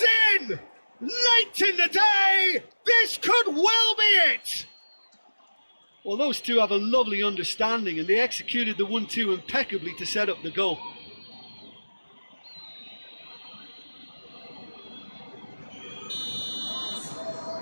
in! Late in the day! This could well be it! Well, those two have a lovely understanding, and they executed the 1-2 impeccably to set up the goal.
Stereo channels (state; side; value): inverted; both; correlation -1.00